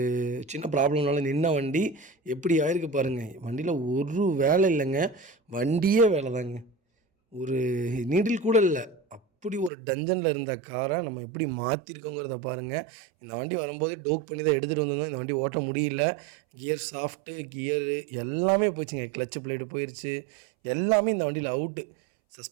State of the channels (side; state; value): left; drops out; at 9.7 s